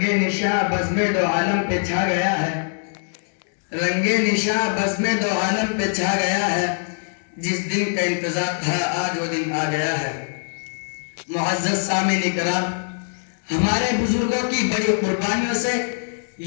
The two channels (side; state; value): right; silent; 64 dB below the other